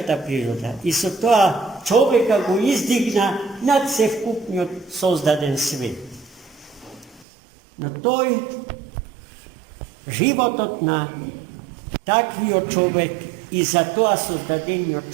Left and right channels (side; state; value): left; drops out; at 7.2 s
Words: природа. И со тоа човека го издигна над севкупниот создаден свет. Но тој, животот на таквиот човек и за тоа создадениот